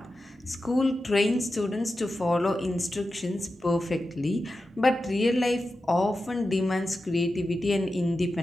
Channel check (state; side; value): normal; both; correlation 0.92